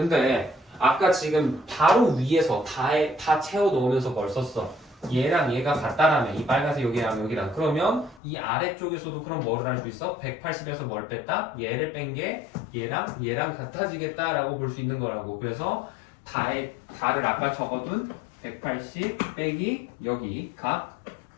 아까 지금 바로 위에서 다 채워 놓으면서 뭘 썼어? 얘랑 얘가 같다라면 이 빨간색 여기랑 여기랑 그러면 이 아래쪽에서도 그럼 뭐를 할 수 있어? 180에서 뭘 뺐다? 얘를 뺀 게 얘랑 같아지겠다라고 볼 수 있는 거라고. 그래서 다를 아까 적어둔 180 빼기 여기 각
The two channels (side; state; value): right; drops out; at 8.2 s